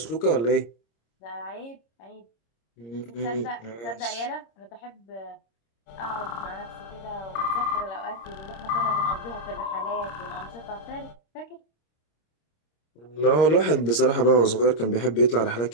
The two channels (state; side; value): late; right; 26 ms